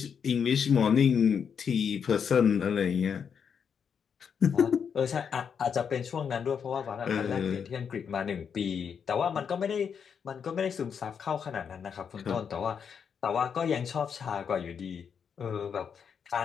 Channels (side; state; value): right; quieter; 7.0 dB